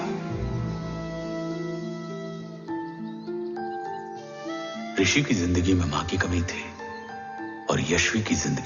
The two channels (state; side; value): identical; both; correlation 1.00